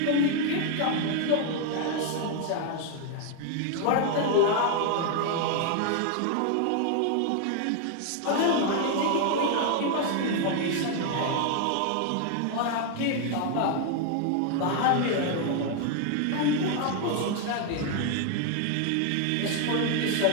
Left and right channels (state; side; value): different; both; correlation 0.00